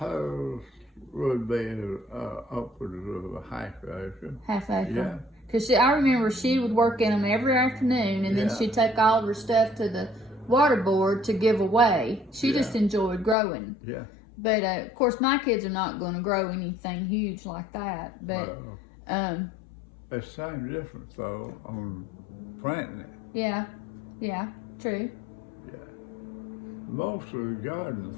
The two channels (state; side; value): drops out; right; at 13.4 s